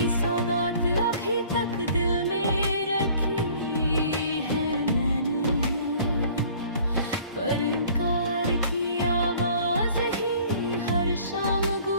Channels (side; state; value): both; inverted; correlation -0.52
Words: सौगात अभी तक दिल में रखी है मैंने, पर इनकार की आवाज ही हर शाम